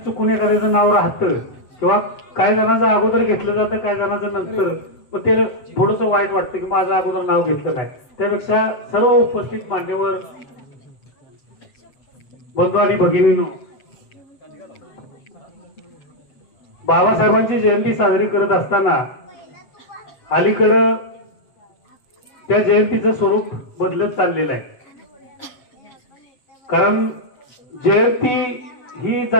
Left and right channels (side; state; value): right; late; 7.7 ms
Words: चुकून एखाद्याचं नाव राहतं किंवा काही जणांचं अगोदर घेतलं जातं, काही जणांचं नंतर, मग ते थोडंसं वाईट वाटतं की माझं अगोदर नाव घेतलं नाही। त्यापेक्षा सर्व उपस्थित मान्यवर बंधू आणि भगिनींनो, बाबासाहेबांची जयंती साजरी करत असताना अलीकडं त्या जयंतीचं स्वरूप बदलत चाललेलं आहे। कारण जयंती ही